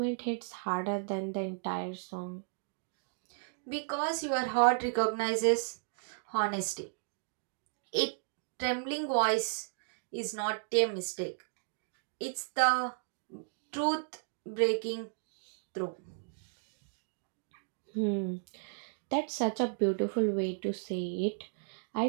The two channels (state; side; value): silent; left; digital silence